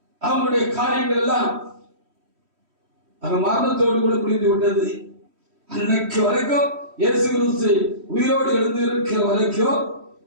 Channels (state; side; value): late; left; 3.1 ms